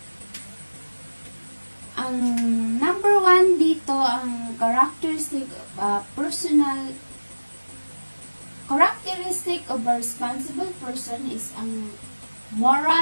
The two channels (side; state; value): both; inverted; correlation -1.00